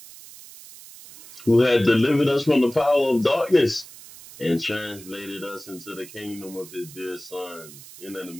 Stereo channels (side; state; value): right; noise; hiss, 18 dB below the sound